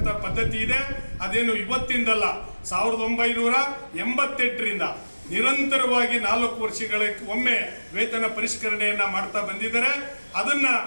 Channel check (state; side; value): inverted; both; correlation -1.00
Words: ಪದ್ಧತಿ ಇದೆ, ಅದೇನು ಇವತ್ತಿಂದಲ್ಲ, 1988ರಿಂದ ನಿರಂತರವಾಗಿ 4 ವರ್ಷಗಳ ಒಮ್ಮೆ ವೇತನ ಪರಿಷ್ಕರಣೆಯನ್ನ ಮಾಡ್ತಾ ಬಂದಿದ್ದಾರೆ. ಅದನ್ನ